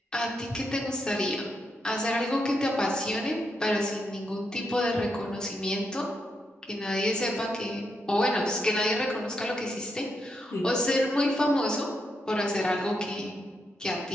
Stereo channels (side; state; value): both; normal; correlation 0.81